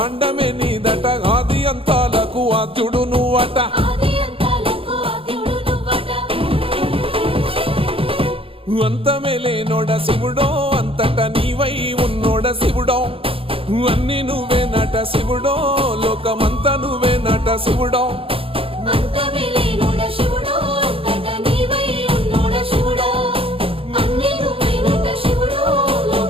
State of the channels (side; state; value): left; late; 0.27 ms